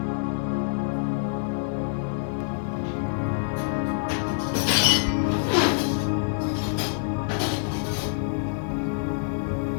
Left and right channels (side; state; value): right; silent; 61 dB below the other